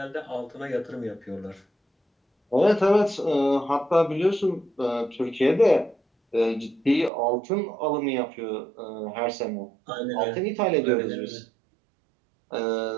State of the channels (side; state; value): left; drops out; at 7.1 s